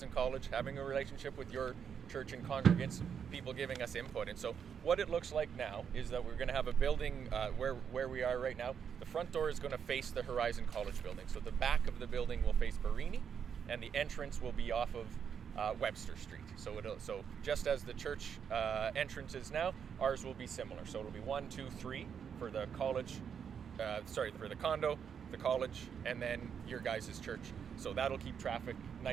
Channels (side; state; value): left; quieter; 7.4 dB